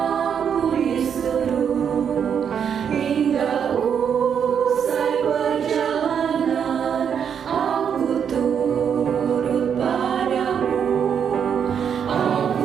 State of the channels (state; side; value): quieter; left; 7.7 dB